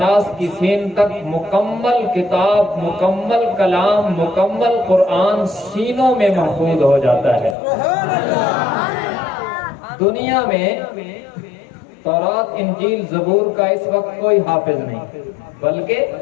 کی سین تک مکمل کتاب، مکمل کلام، مکمل قرآن سینوں میں محفوظ ہو جاتا ہے. دنیا میں تورات، انجیل، زبور کا اس وقت کوئی حافظ نہیں، بلکہ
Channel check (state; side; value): drops out; right; at 7.6 s